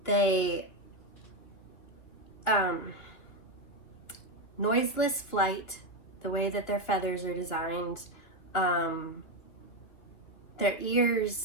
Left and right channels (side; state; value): right; late; 2.7 ms